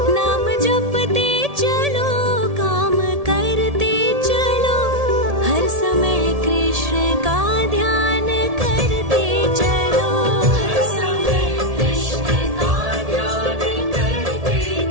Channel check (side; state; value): left; late; 1.7 ms